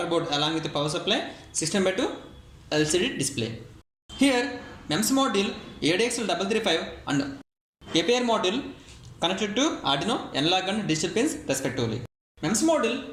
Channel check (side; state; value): both; identical; correlation 1.00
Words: board along with the power supply, 16:2 LCD display. Here MEMS module ADXL335 and APR module connected to Arduino analog and digital pins respectively. MEMS module